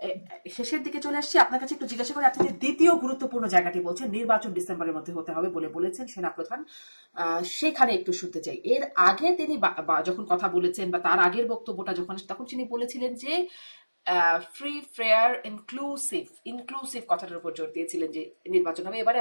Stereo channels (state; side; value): inverted; both; correlation -1.00